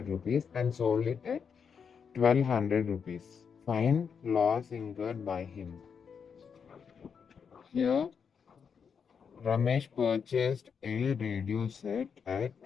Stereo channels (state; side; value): quieter; right; 6.6 dB